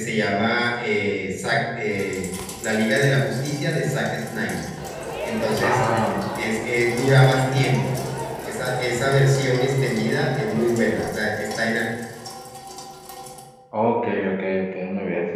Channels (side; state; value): both; identical; correlation 1.00